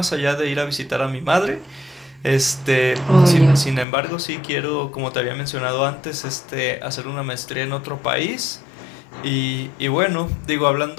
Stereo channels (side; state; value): right; drops out; at 3.9 s